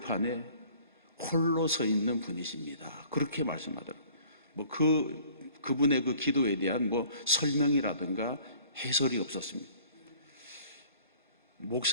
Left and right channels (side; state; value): both; inverted; correlation -0.52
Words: 홀로 서 있는 분이십니다. 그렇게 말씀하더라고요. 그분의 그 기도에 대한 설명이라든가 해설이 없었습니다.